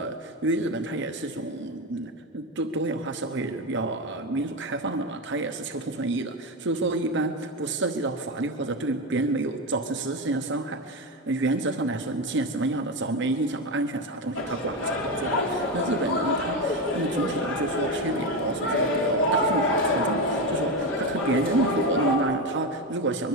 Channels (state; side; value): normal; both; correlation 0.15